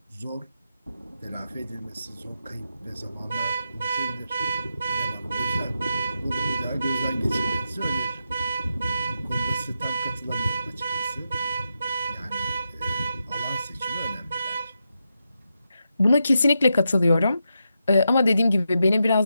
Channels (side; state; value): both; inverted; correlation -0.86